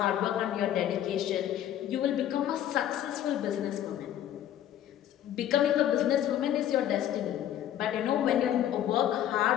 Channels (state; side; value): quieter; right; 11.3 dB